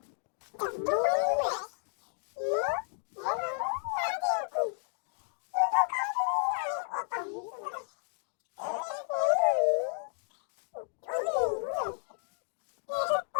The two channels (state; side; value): silent; right; 56 dB below the other